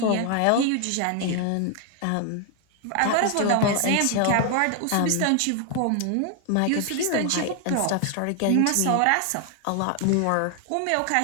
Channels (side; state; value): both; different; correlation 0.00